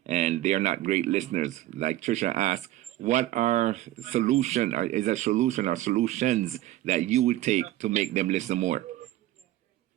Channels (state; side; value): quieter; left; 15.0 dB